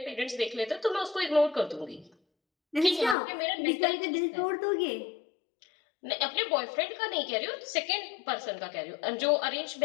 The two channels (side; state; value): right; drops out; at 3.2 s